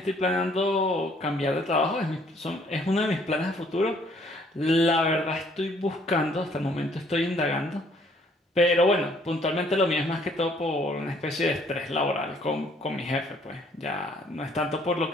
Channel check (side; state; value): both; normal; correlation 0.62